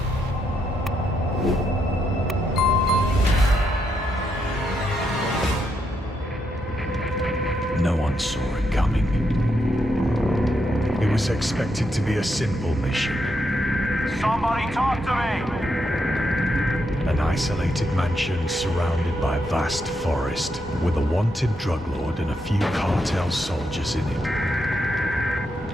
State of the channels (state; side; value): normal; both; correlation 0.80